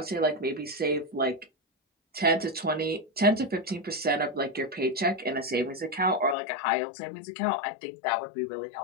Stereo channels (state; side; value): drops out; right; at 6.4 s